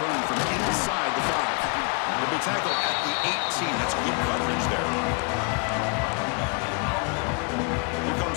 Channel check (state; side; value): quieter; right; 35.2 dB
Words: from inside the 5. The big tackle at the 18. That's good coverage there. Here